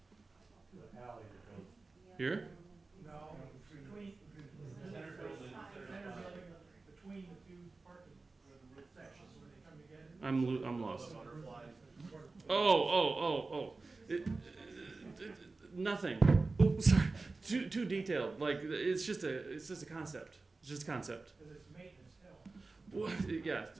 The alley that goes. here? No, between, Center building, center building, between the two parking sections when they come together. I'm lost. The butterfly. Oh. Nothing. Oh, sorry. Too detailed. Like it's just a concept. It's just a concept. Because it's maintenance still. What? Yeah.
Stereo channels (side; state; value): left; quieter; 3.7 dB